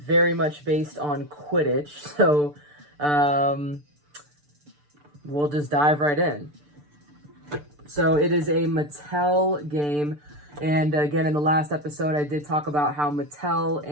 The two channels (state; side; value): late; left; 6.8 ms